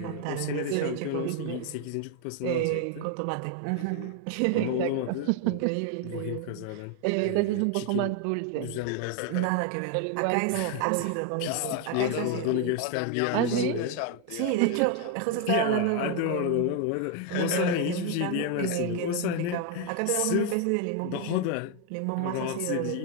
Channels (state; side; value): different; both; correlation 0.01